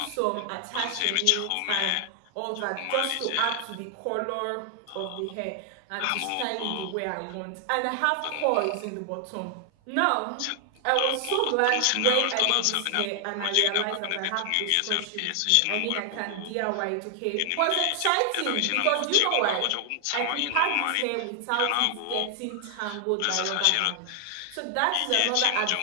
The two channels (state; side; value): different; both; correlation 0.00